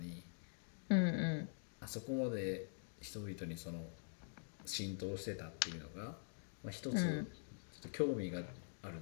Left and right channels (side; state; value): right; silent; digital silence